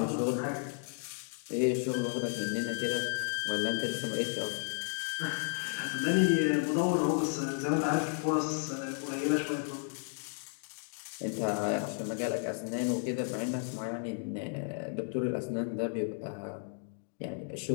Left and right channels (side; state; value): right; silent; 56 dB below the other